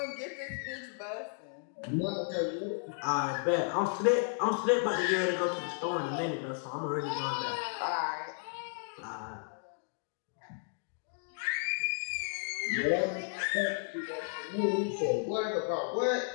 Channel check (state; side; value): silent; right; 55 dB below the other